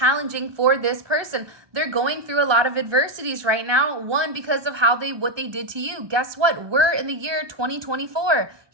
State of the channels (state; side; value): late; left; 1.2 ms